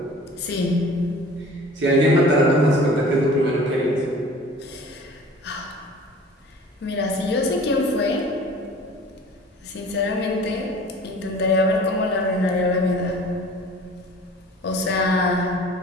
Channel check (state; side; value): normal; both; correlation 0.45